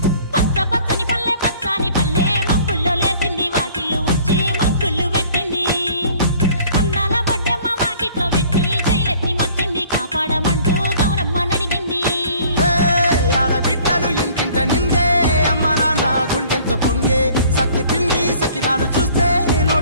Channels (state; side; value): inverted; both; correlation -0.53